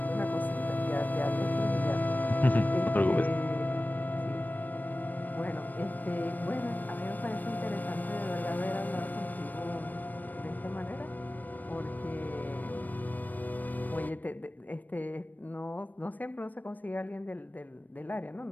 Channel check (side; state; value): right; late; 0.084 ms